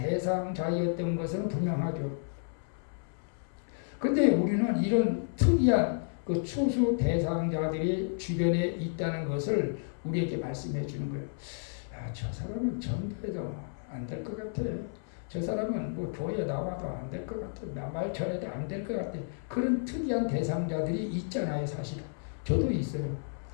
것은 분명하죠. 근데 우리는 이런 특이한 그 추수 대상자들이 주변에 있다는 것을 우리에게 말씀해 주는 거예요. 저 사람은 전도해도 안 될 것 같아. 저 사람은 뭐 교회에 나와도 안 될 것 같아. 말 전해도 안 될 것 같아. 그런 특이한 대상자들이 있잖아요, 사실은. 저도 있어요.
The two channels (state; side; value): silent; right; 57 dB below the other